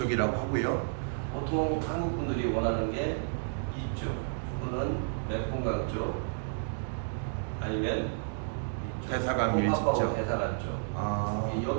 하고요. 보통 한국 분들이 원하는 게 이쪽 또는 매폰강 쪽 아니면 대사관 일직죠. 대사관 쪽.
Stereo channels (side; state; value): left; silent; digital silence